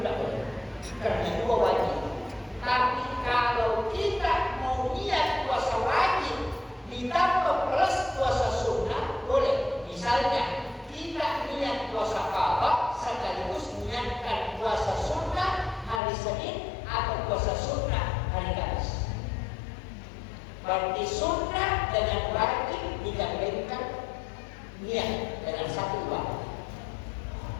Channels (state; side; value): drops out; right; at 16.0 s